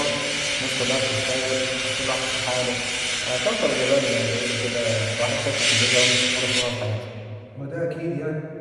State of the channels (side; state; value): both; identical; correlation 1.00